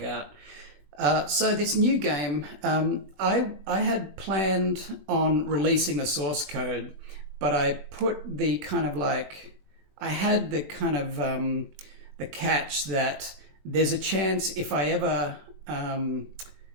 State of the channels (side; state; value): left; late; 20 ms